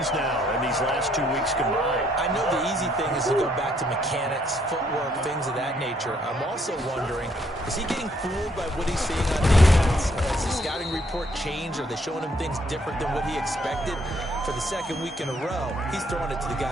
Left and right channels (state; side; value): normal; both; correlation 0.69